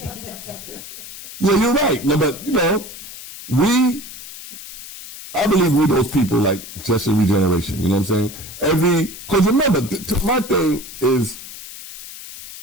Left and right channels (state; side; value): noise; left; hiss, 13 dB below the sound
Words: bro. Yeah, you're right. No, but I believe we're those people like just in regeneration. You know what I'm saying? Because remember, my thing is